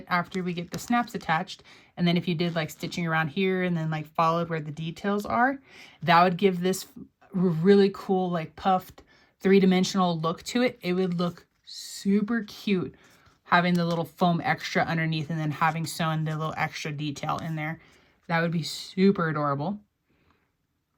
after we get the snaps attached, and then if you did like stitching around here and then like followed where the details are, that would give this really cool like puffed 3-dimensional look to it. It would look super cute having the little foam extra underneath and then having sewn the little extra detail in there. That would be super adorable.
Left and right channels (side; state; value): both; identical; correlation 1.00